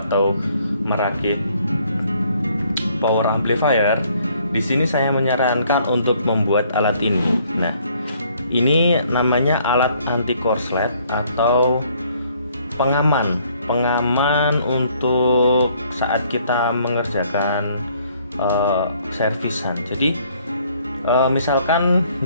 merakit power amplifier, di sini saya menyarankan untuk membuat alat ini. Nah, ini namanya alat anti korslet atau pengaman untuk saat kita mengerjakan servisan. Jadi misalkan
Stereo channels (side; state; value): both; inverted; correlation -0.64